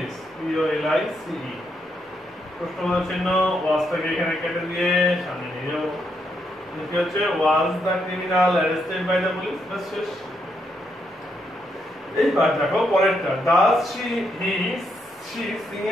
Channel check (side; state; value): both; normal; correlation 0.78